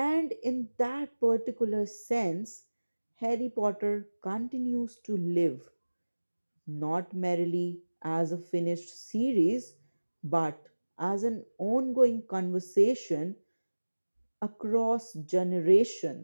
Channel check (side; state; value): both; inverted; correlation -1.00